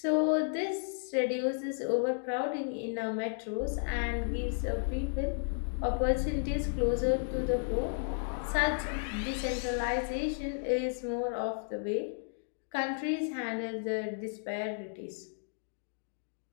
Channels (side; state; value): right; silent; digital silence